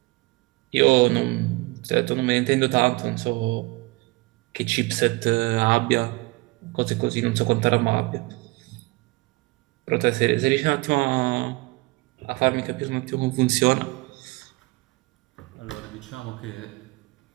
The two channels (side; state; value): left; quieter; 24.0 dB